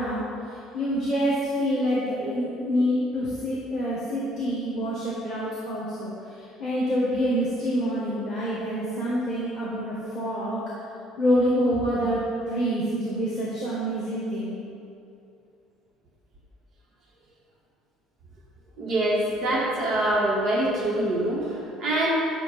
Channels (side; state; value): both; normal; correlation 0.63